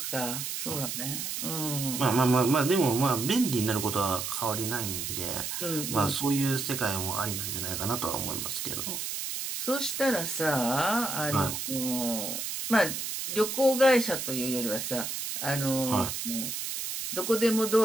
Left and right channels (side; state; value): right; noise; hiss, 4 dB below the sound